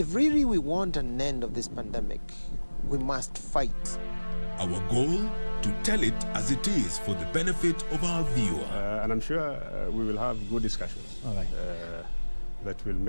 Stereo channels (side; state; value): both; inverted; correlation -1.00